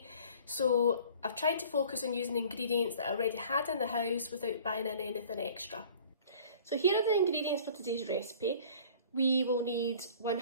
So I've tried to focus on using ingredients that I already had in the house without buying in anything extra. So here are the ingredients for today's recipe. We will need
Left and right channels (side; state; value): both; inverted; correlation -0.48